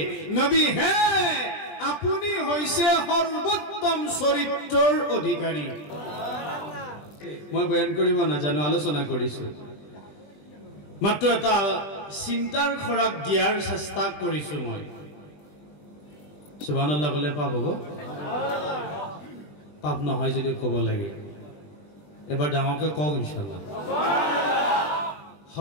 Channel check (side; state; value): right; late; 20 ms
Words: নবী হে আপুনি হৈছে সৰ্বোত্তম চৰিত্ৰৰ অধিকাৰী মই বয়ান কৰিব নাজানো আলোচনা কৰিছো মাত্ৰ এটা চিন্তাৰ খৰাক দিয়াৰ চেষ্টা কৰিছো মই সুবহানাল্লাহ কলে পাপ হ'ব পাপ নহয় যদি ক'ব লাগে এবাৰ ডাঙৰকৈ কওক ইনশাআল্লাহ